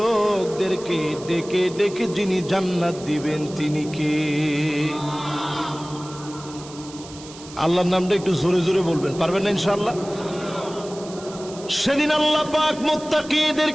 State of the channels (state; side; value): noise; right; hiss, 17 dB below the sound